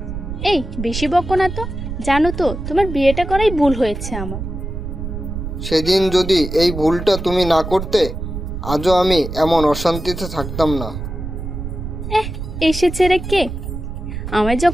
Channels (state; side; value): noise; right; rumble, 7 dB below the sound